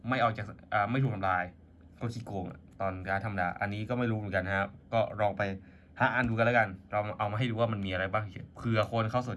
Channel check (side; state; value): both; identical; correlation 1.00